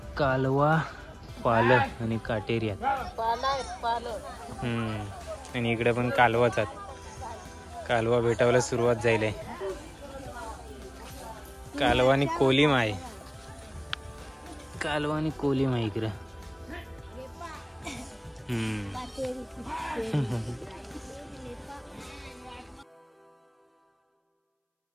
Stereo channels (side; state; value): both; identical; correlation 1.00